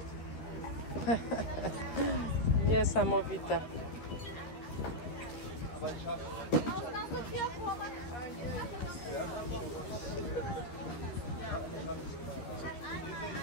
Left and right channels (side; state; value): right; late; 13 ms